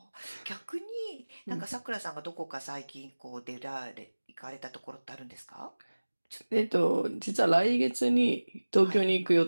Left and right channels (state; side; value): inverted; both; correlation -1.00